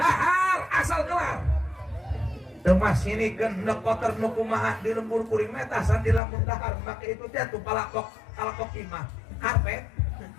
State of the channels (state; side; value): drops out; right; at 6.2 s